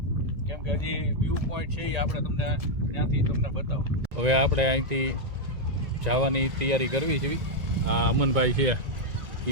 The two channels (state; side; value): late; left; 1.9 ms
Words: કેમ કે હજી વ્યૂ પોઈન્ટ છે એ આપણે તમને ત્યાંથી તમને બતાવો. હવે આપણે અહીંથી જવાની તૈયારી કરવી છે. આ અમનભાઈ છે